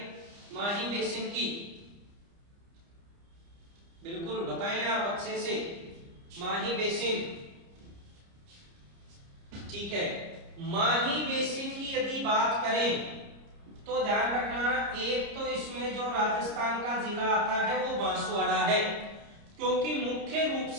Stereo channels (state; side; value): late; left; 30 ms